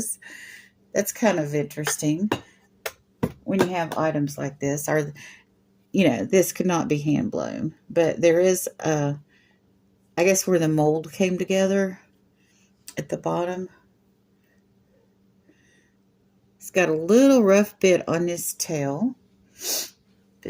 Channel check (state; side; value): identical; both; correlation 1.00